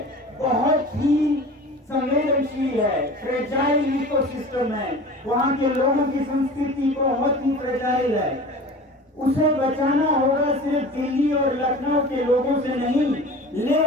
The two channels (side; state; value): both; normal; correlation 0.38